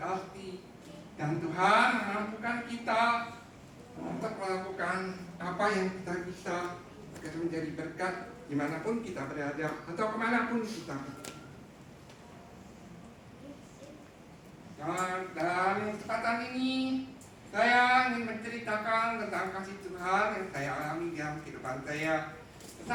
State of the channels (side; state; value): both; identical; correlation 1.00